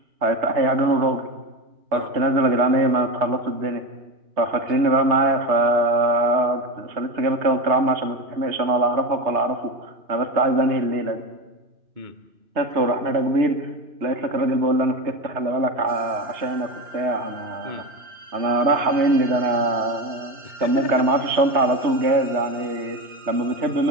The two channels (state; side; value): late; left; 3.3 ms